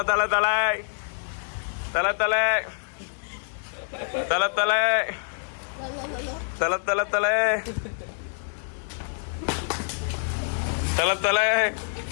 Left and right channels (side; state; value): right; silent; digital silence